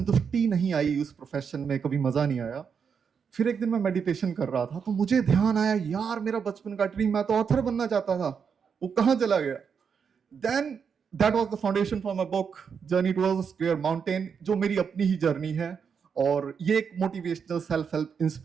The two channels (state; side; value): quieter; left; 6.5 dB